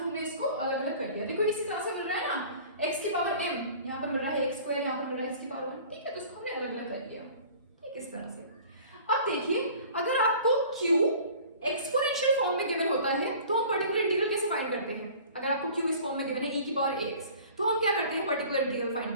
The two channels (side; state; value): both; inverted; correlation -0.46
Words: इसको अलग अलग कर लिया. देखो इसी तरह से मिल रहा है ना, x की पावर m, यहाँ पर मिल रहा है x², यहाँ पर मिल रहा है x की पावर 1. ठीक है, तो इसको हमने अलग अलग कर लिया. ठीक, इस तरह से. अब देखिए अगर आपको q एक्सपोनेंशियल फॉर्म में गिवन होता है तो हम पर्टिकुलर इंटीग्रल कैसे फाइंड करते हैं. अगर आपको q इस फॉर्म में गिवन है e की पावर ax, तो हम क्या करते हैं पर्टिकुलर इंटीग्रल